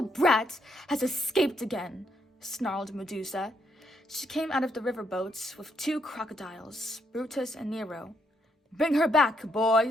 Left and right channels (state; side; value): normal; both; correlation 0.75